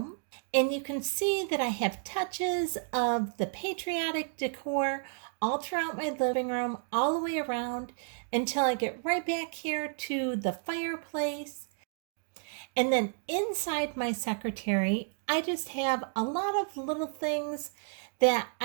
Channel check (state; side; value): silent; left; 56 dB below the other